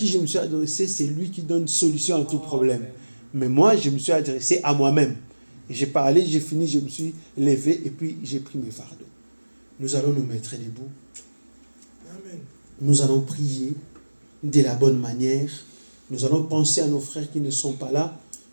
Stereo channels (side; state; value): both; inverted; correlation -1.00